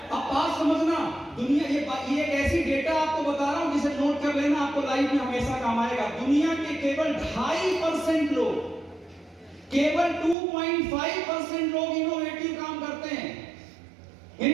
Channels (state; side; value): drops out; left; at 10.4 s